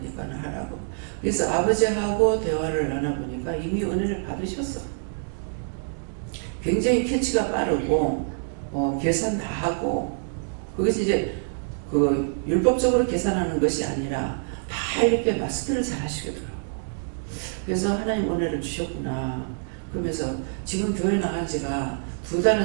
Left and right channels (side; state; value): left; silent; digital silence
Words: 하라고. 그래서 아버지하고 대화를 나눠보니까 이미 은혜를 받으셨어. 굉장히 캐치가 빠르고 계산 다 하고 그것이 이제 그 율법적으로 계산하는 것이 아니라 다 이렇게 마스터를 잘 하시더라고요. 그래서 하나님 은혜를 주셨구나. 그러면서 지금 교회 나간 지가